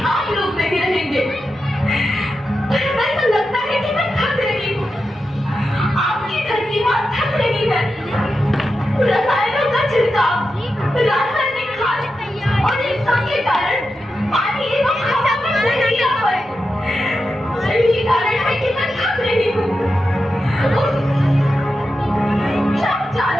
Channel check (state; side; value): normal; both; correlation 0.89